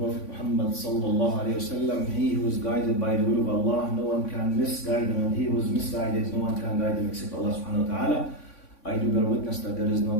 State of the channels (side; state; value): right; late; 3.5 ms